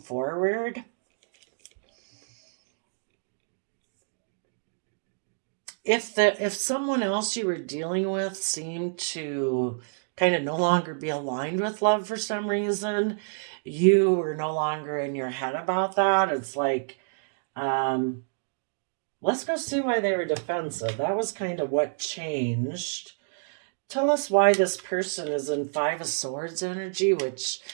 If someone else you were dealing with seemed to kind of no longer be aligned with love for some reason, you were no longer in your head about that. It's like, um, let's go see why they were defensive. That was kind of what changed. Tell us why this person is in Five of Swords energy, which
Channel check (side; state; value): left; silent; digital silence